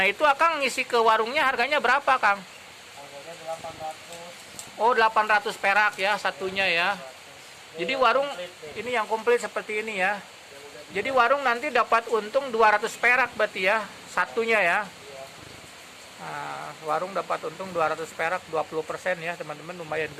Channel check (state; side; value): identical; both; correlation 1.00